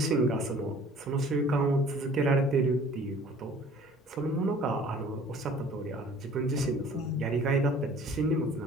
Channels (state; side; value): normal; both; correlation 0.51